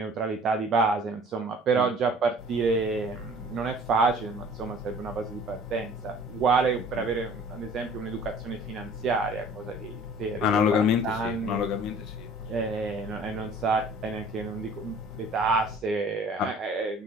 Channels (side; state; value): both; normal; correlation 0.49